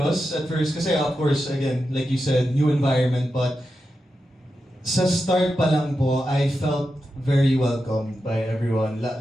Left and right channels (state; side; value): normal; both; correlation 0.89